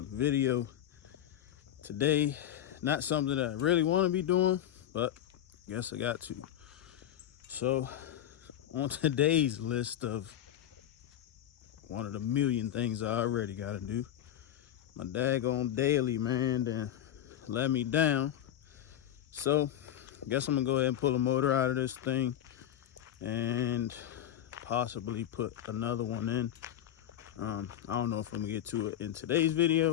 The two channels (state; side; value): quieter; right; 11.2 dB